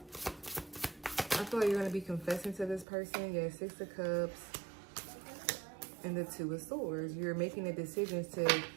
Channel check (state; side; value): drops out; left; at 2.9 s